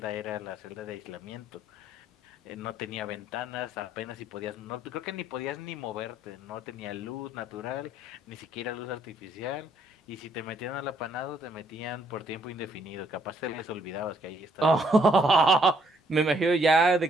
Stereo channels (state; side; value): normal; both; correlation 0.68